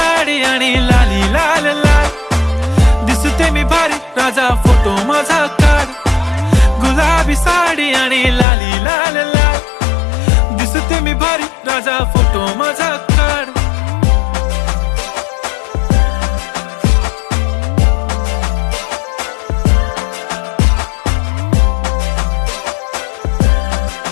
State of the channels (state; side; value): drops out; right; at 8.5 s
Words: आणि लाली लाल लाल, दिसते मी भारी राजा फोटो माझा काढ. गुलाबी साडी आणि लाली लाल लाल, दिसते मी भारी राजा फोटो माझा काढ.